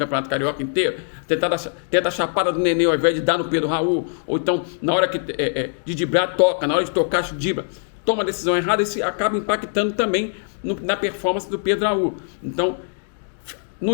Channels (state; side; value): silent; right; digital silence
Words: Carioca inteiro, tenta a chapada do Nenê ao invés de dar no Pedro Raul, ou então na hora de driblar, toca, na hora de tocar, dribla, toma a decisão errada, isso acaba impactando também na performance do Pedro Raul. Então,